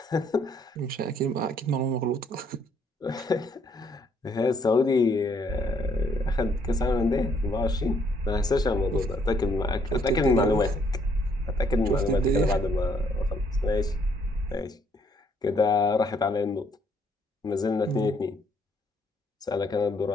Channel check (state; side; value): normal; both; correlation 0.68